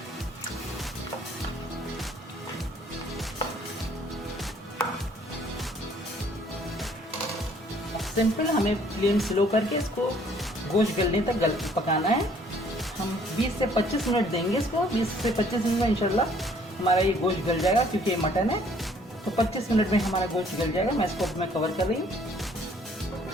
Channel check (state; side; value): normal; both; correlation 0.60